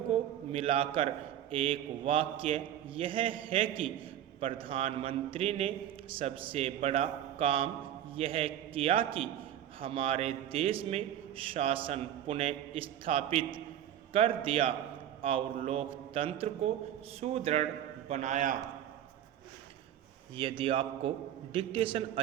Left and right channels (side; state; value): left; quieter; 11.0 dB